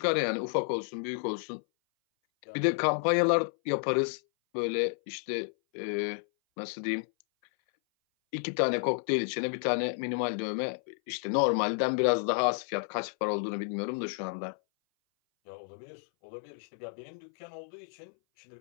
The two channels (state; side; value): silent; right; 57 dB below the other